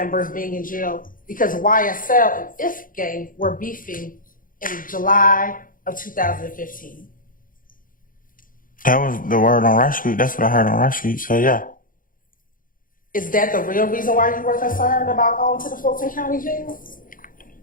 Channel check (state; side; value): late; right; 0.40 ms